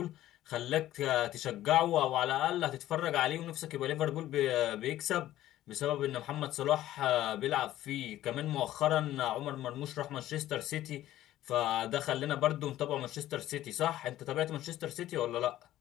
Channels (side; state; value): right; quieter; 13.9 dB